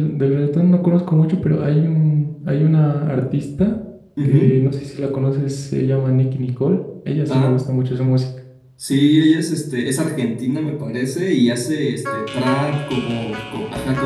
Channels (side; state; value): both; identical; correlation 1.00